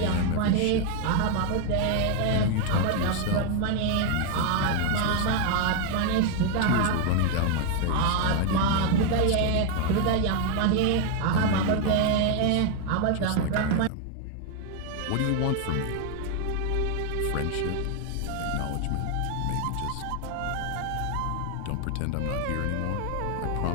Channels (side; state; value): both; different; correlation 0.01